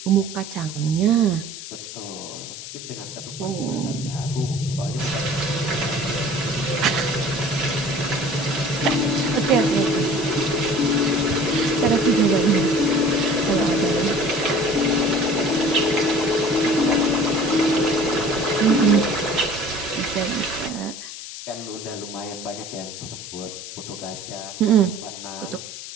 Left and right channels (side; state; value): left; noise; hiss, 11 dB below the sound